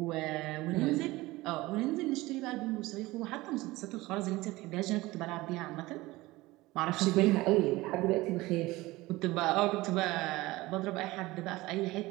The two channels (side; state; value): left; quieter; 19.7 dB